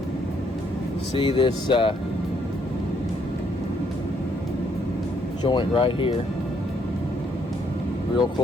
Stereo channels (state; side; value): normal; both; correlation 0.70